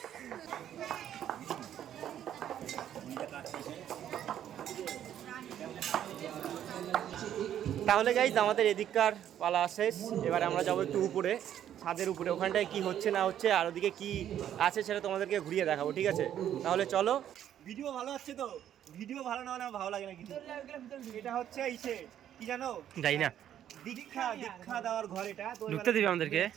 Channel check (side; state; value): left; quieter; 10.6 dB